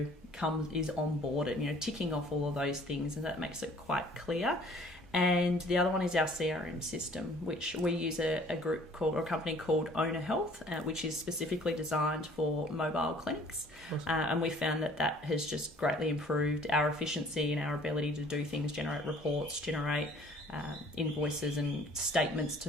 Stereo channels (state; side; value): normal; both; correlation 0.54